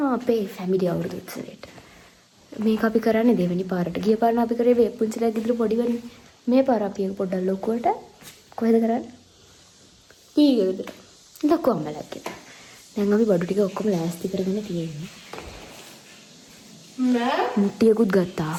අපේ ෆැමිලි අවුරුදු උත්සවයට. මේක අපි කරන්නේ දෙවෙනි පාරට. ගිය පාර අපි කරේ වේපුංචිලා ගෙදර පොඩි වෙන්නේ. මේ පාර අපි එක පොඩ්ඩක් ලොකුවට කොහෙද කරන්නේ? ඊගෙදර. ලොකු අම්මලාගේ. දැන් අපි බඩු ටික ඔක්කොම ලෑස්ති කරගෙන තියෙන්නේ. නෑ මුට්ටියකුත් ගත්තා.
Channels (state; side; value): identical; both; correlation 1.00